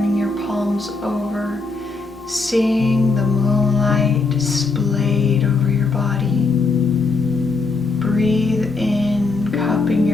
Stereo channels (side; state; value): right; quieter; 3.9 dB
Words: your palms over, seeing the moonlight displayed over your body. Breathe in, cupping